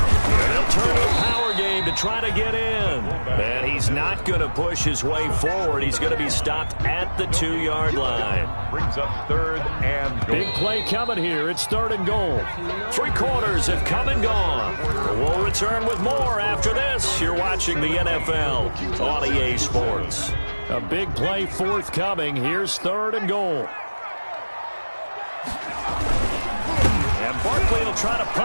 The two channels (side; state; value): both; inverted; correlation -1.00